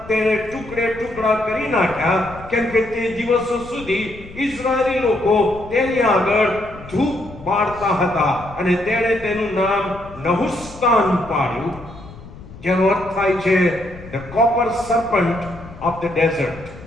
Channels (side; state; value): left; noise; rumble, 17 dB below the sound